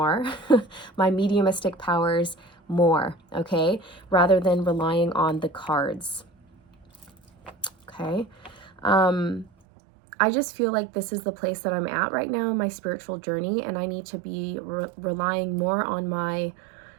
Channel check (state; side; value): drops out; left; at 9.5 s